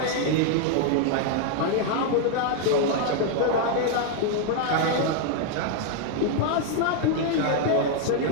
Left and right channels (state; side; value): different; both; correlation 0.00